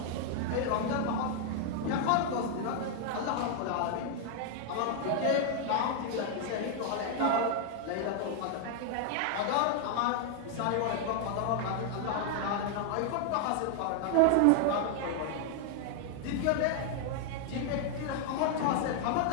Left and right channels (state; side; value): different; both; correlation 0.00